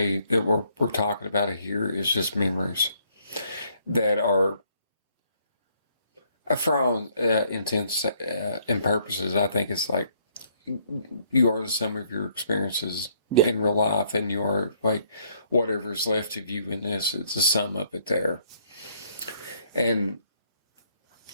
that we're talking about it here is just memories that are, for all intents and purposes, I think it's like you are the sum of your experiences in real life, and you are like whatever's left of you in this, it's a sum of it there. And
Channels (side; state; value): both; inverted; correlation -0.67